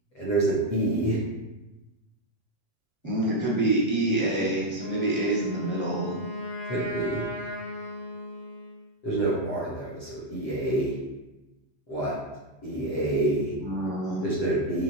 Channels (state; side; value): late; right; 7.8 ms